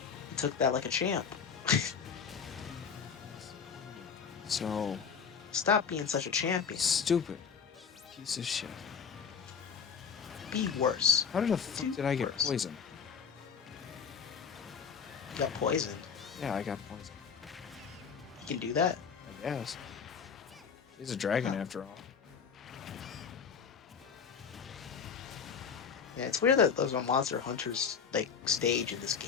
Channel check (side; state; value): right; quieter; 6.5 dB